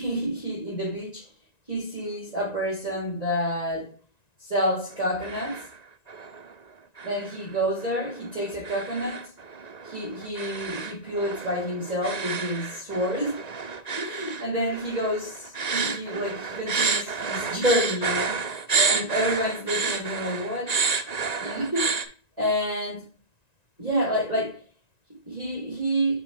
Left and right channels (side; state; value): right; late; 1.9 ms